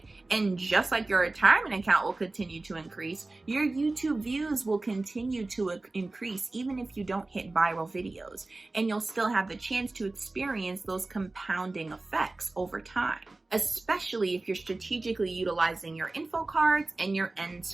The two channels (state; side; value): quieter; left; 3.1 dB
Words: And just like your retirement account will continue to increase, your YouTube views will continue to increase even if you don't hit viral videos. And you'll still have the chance to experience those compounding effects over time, especially if you're strategically utilizing your info cards and your end